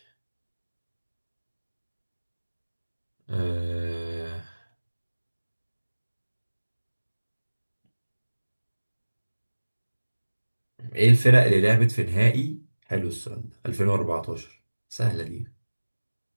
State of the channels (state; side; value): inverted; both; correlation -1.00